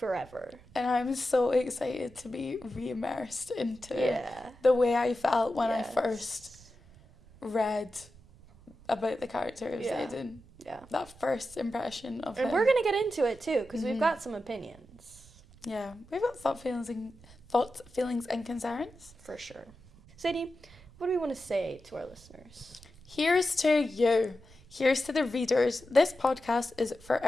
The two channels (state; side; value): noise; right; rumble, 23 dB below the sound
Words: And I'm so excited to be re-immersed into the way I felt when I first read about the character of Xaden. Yeah. That first impression of him. And we're going to get into it too, because we've got some opinions. Yeah, we've got thoughts, feelings, and concerns. For sure. Sadie, what do we want to say to our listeners? Here's to you. Here's to the readers. This podcast is